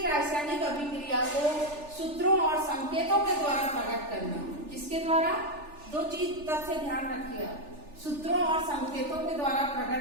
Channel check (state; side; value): late; left; 3.4 ms